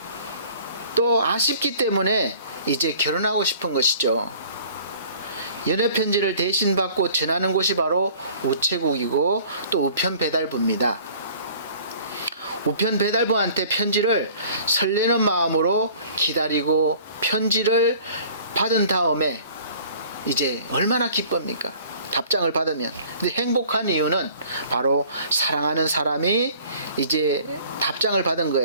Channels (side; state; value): both; inverted; correlation -0.50